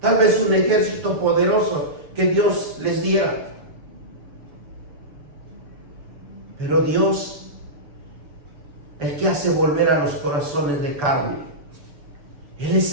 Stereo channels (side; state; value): left; late; 6.9 ms